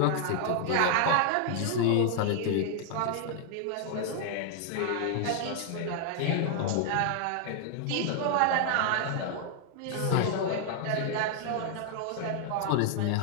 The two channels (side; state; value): both; different; correlation 0.00